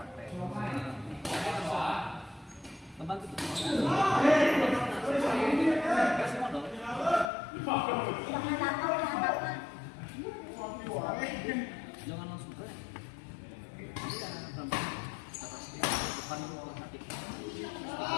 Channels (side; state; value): right; drops out; at 7.3 s